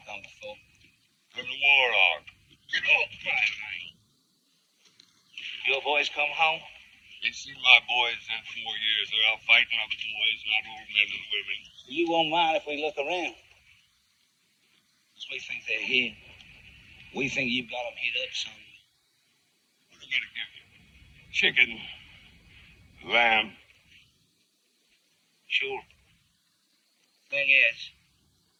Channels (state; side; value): identical; both; correlation 1.00